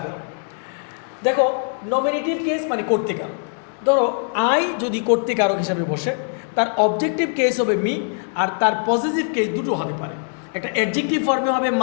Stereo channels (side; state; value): right; silent; 57 dB below the other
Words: করো। দেখো, নমিনেটিভ কেস মানে কর্তৃকারক। ধরো আই যদি কর্তৃকারক হিসাবে বসে, তার অবজেক্টিভ কেস হবে মি, আর তার পসেসিভ কেস দুটো হতে পারে। একটা অ্যাডজেক্টিভ ফর্মে হবে